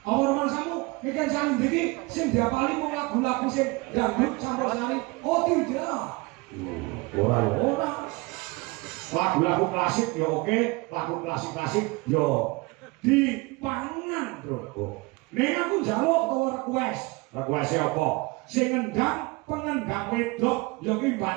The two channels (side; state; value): left; quieter; 25.1 dB